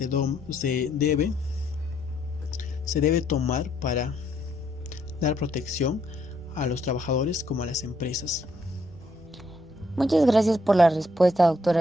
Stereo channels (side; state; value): both; normal; correlation 0.71